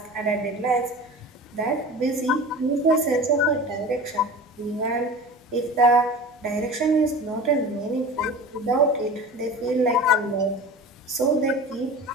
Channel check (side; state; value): both; normal; correlation 0.35